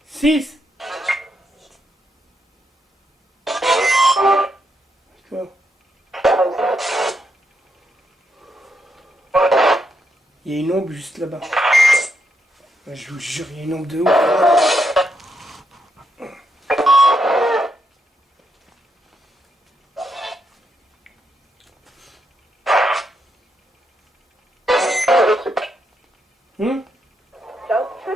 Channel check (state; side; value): normal; both; correlation 0.80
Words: Six. D'accord. Il y a une ombre juste là-bas. Je vous jure, il y a une ombre de ouf.